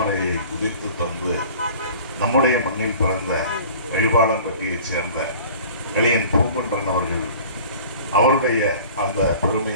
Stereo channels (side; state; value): both; inverted; correlation -0.44